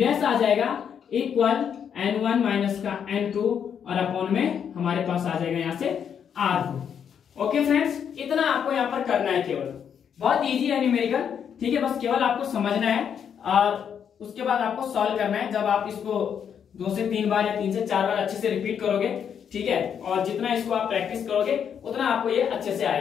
आ जाएगा इक्वल n1 माइनस का n2 और अपॉन में हमारे पास आ जाएगा यहाँ से r2। ओके फ्रेंड्स, इतना आपको यहाँ पर करना है, केवल बहुत इजी है न्यूमेरिकल, ठीक है। बस केवल आपको समझना है और उसके बाद आपको सॉल्व करना है। जब आप इसको 2 से 3 बार या 3 से 4 बार अच्छे से रिपीट करोगे, ठीक है, और जितना इसको आप प्रैक्टिस करोगे उतना आपको ये अच्छे से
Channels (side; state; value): right; quieter; 8.0 dB